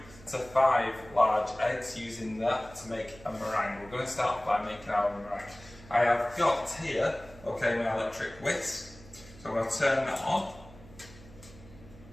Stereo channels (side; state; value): right; noise; hum, 20 dB below the sound